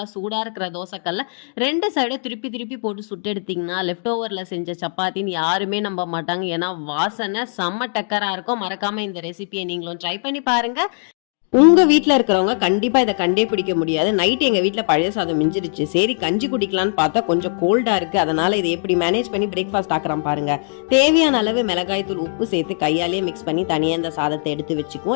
சூடா இருக்கிற தோசைக்கல்ல 2 சைடும் திருப்பி திருப்பி போட்டு சுட்டு எடுத்தீங்கன்னா லெஃப்ட் ஓவர்ல செஞ்ச சப்பாத்தின்னு யாருமே நம்ப மாட்டாங்க. ஏன்னா வாசனை செம்ம டக்கரா இருக்கும். மறக்காம இந்த ரெசிபியை நீங்களும் ட்ரை பண்ணி பாருங்க. உங்க வீட்ல இருக்கிறவங்க கண்டிப்பா இதை கண்டே பிடிக்க முடியாது. நைட் எங்க வீட்ல பழைய சாதம் மிஞ்சிருச்சு, சரி கஞ்சி குடிக்கலான்னு பார்த்தா கொஞ்சம் கோல்டா இருக்கு, அதனால இதை எப்படி மேனேஜ் பண்ணி பிரேக்ஃபாஸ்ட் ஆக்குறோம் பாருங்க. தேவையான அளவு மிளகாய் தூள், உப்பு சேர்த்து கையாலேயே மிக்ஸ் பண்ணி தனியா இந்த சாதத்தை எடுத்து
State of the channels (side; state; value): right; silent; 63 dB below the other